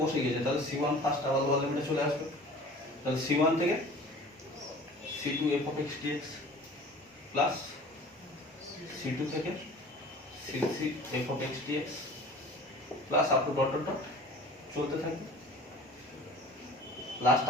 বসে গেছে তাহলে c1 ফার্স্ট আবার লোয়ার লিমিটে চলে আসবে, তাহলে c1 থেকে c2 f of x dx plus c2 থেকে c3 f of x dx plus up to dot dot dot চলতে থাকবে, লাস্ট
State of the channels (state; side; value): normal; both; correlation 0.43